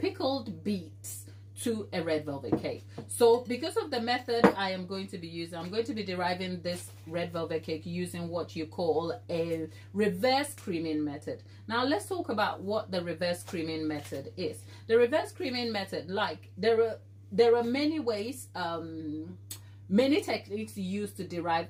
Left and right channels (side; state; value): both; identical; correlation 1.00